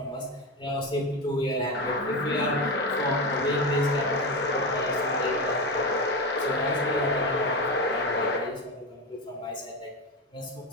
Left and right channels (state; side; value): normal; both; correlation 0.17